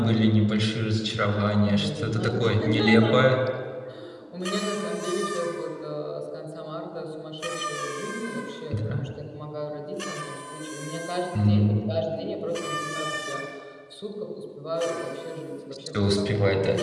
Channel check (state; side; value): identical; both; correlation 1.00